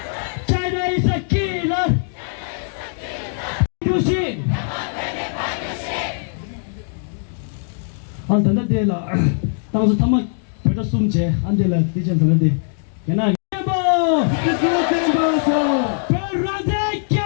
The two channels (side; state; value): right; silent; digital silence